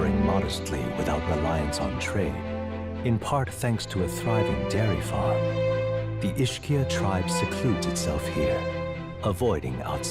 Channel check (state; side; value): identical; both; correlation 1.00